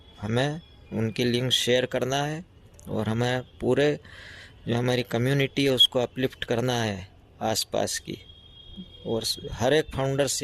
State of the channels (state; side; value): identical; both; correlation 1.00